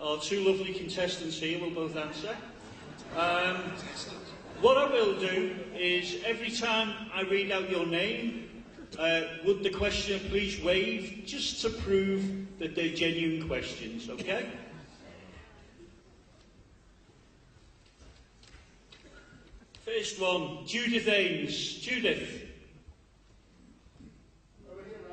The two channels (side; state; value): both; identical; correlation 1.00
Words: our two lovely contestants here will both answer. What I will do is, every time I read out your name, would the questioner please wave, just to prove that they're genuine questions, okay? First one, Judith Ames. Judith. Over here,